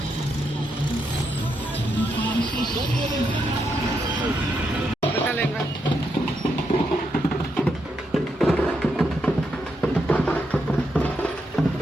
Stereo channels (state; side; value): normal; both; correlation 0.81